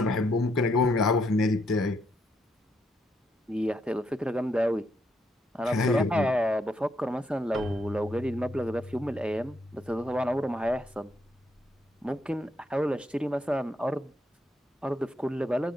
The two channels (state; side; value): normal; both; correlation 0.75